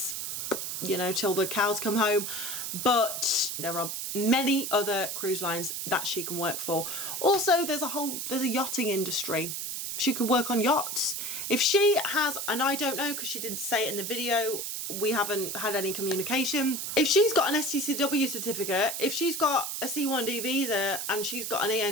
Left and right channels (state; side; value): noise; right; hiss, 4 dB below the sound